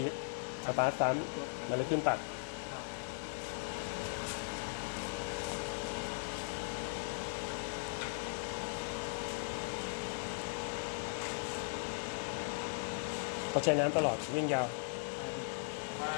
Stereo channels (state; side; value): silent; right; digital silence